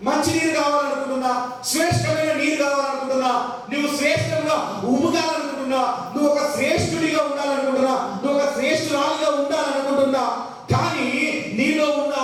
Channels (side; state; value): both; identical; correlation 1.00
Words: మంచి నీరు కావాలనుకుంటున్నా, శ్రేష్టమైన నీరు కావాలనుకుంటున్నా, నువ్వు శ్రేష్టంగా ఉమ్మగాలనుకుంటున్నా, నువ్వు ఒక శ్రేష్ఠుడిగా ఉండాలనుకుంటున్నా, నువ్వు ఒక శ్రేష్ఠురాలిగా ఉండాలనుకుంటున్నా, కానీ నీలో ఉన్న